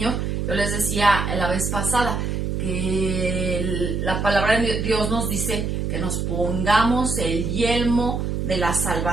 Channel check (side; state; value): right; noise; hum, 1 dB below the sound